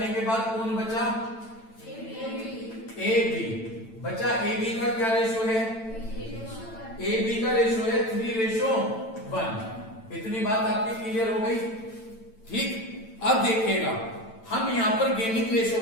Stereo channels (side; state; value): right; late; 9.0 ms